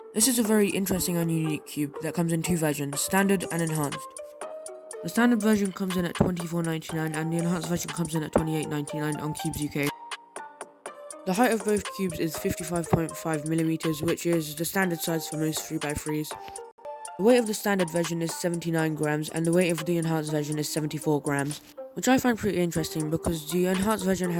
This is a very interesting and unique cube that comes in two versions, standard and enhanced. The standard version comes in at $24.99 and the enhanced version comes in at $28.99 on Cubes UK. The height of both cubes is 55.5mm, which is the standard size for most 3x3s. The weight of the standard version is 79 grams and the weight of the enhanced version is 74 grams. Which I find pretty interesting because the enhanced version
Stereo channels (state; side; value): identical; both; correlation 1.00